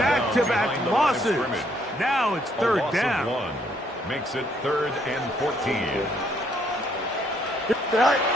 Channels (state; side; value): normal; both; correlation 0.68